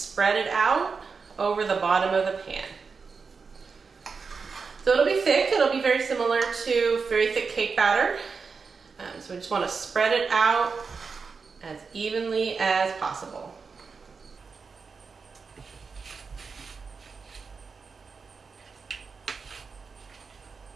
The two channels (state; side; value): quieter; left; 5.1 dB